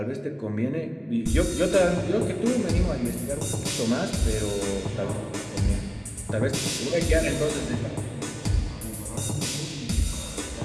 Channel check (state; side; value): identical; both; correlation 1.00